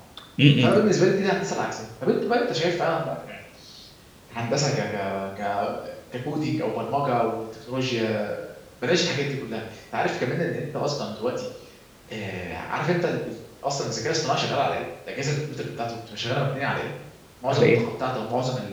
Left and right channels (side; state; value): both; identical; correlation 1.00